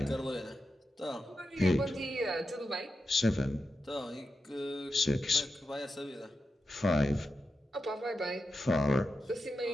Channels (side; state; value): both; normal; correlation 0.89